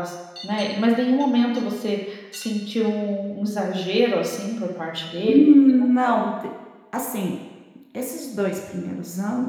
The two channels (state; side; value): identical; both; correlation 1.00